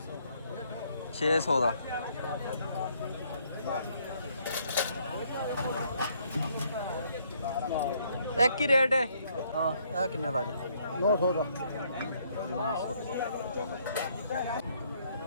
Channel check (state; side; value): inverted; both; correlation -0.68